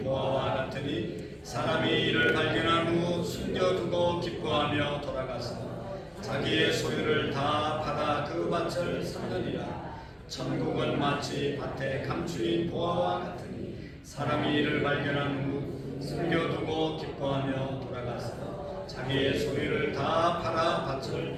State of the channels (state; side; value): identical; both; correlation 1.00